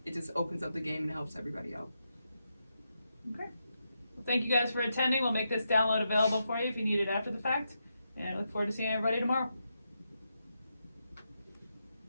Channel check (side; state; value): both; inverted; correlation -0.84